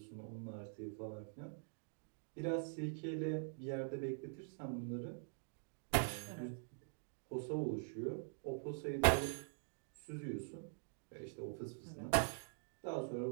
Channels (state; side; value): silent; left; digital silence